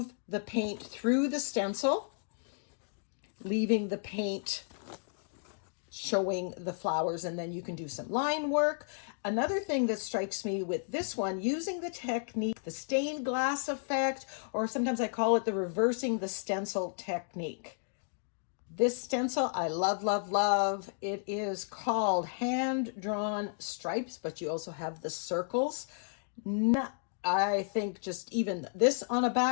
the paint through the stencil, leaving the paint showing the flowers, and then you can do some line work. Another thing that strikes me with this one, using the technique, the stained glass effect, or sometimes I call it the reversing the stencil technique. This stencil I love. It is called Hand-Drawn Stripes, but you also have the circles. I think just even this on a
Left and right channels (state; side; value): silent; right; digital silence